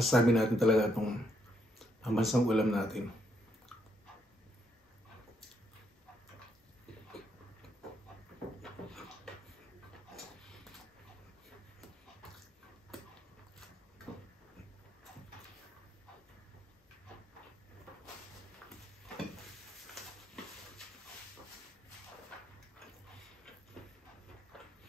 natin talaga itong pambansang ulam natin.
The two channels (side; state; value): both; normal; correlation 0.75